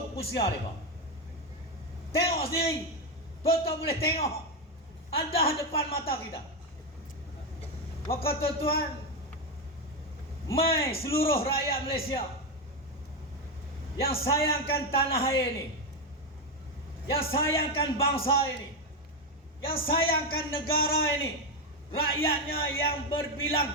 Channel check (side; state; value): both; normal; correlation 0.08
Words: usia mereka. Tengok sendiri, tuan-tuan boleh tengok, ada depan mata kita. Maka tuan-tuan, mai seluruh rakyat Malaysia yang sayangkan tanah air ini, yang sayangkan bangsa ini, yang sayangkan negara ini, rakyatnya yang berbilang